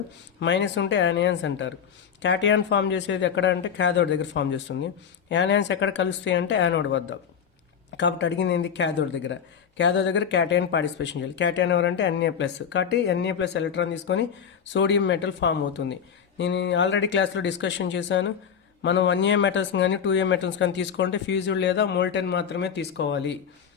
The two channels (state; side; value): quieter; right; 7.6 dB